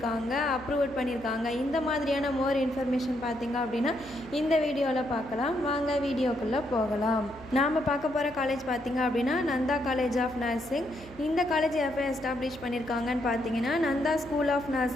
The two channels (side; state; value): left; noise; hum, 24 dB below the sound